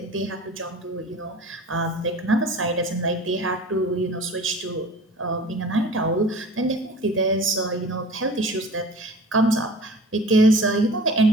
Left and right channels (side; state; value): both; normal; correlation 0.41